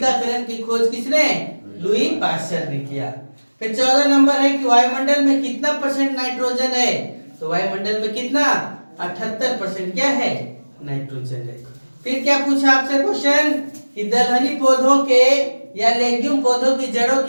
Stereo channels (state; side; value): inverted; both; correlation -1.00